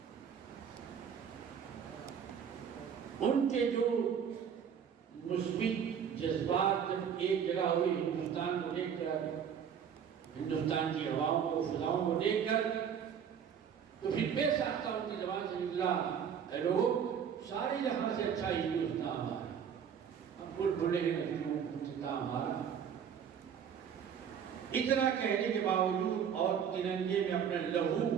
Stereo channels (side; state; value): left; quieter; 7.9 dB